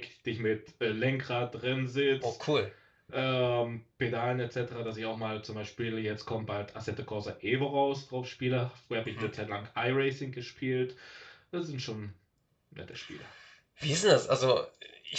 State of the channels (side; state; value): both; identical; correlation 1.00